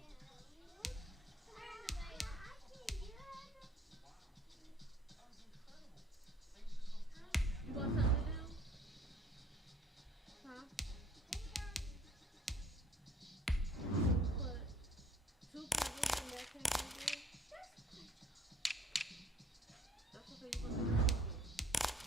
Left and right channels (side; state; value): both; normal; correlation 0.57